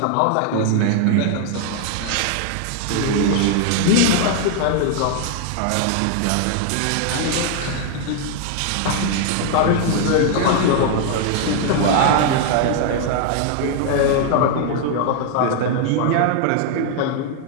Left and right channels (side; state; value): both; different; correlation 0.00